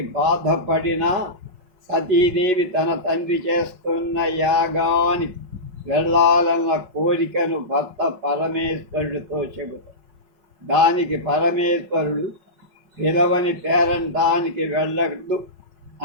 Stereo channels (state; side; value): late; left; 5.4 ms